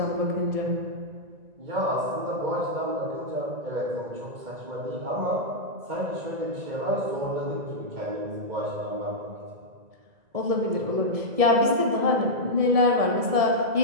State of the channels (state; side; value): late; left; 1.7 ms